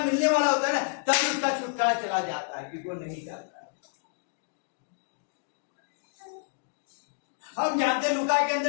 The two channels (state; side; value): silent; right; digital silence